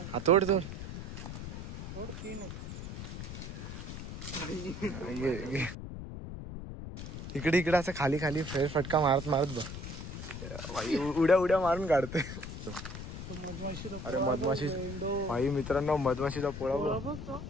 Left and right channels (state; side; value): noise; left; rumble, 8 dB below the sound